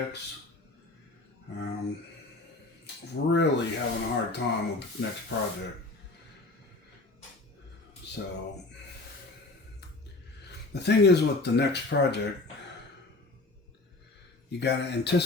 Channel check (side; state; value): right; quieter; 3.2 dB